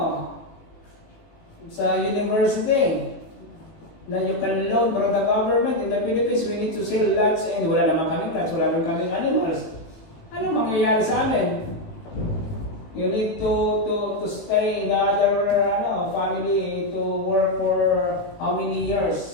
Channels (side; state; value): right; late; 18 ms